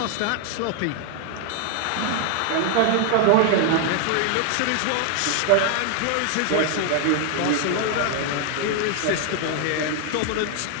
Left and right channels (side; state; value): both; different; correlation 0.00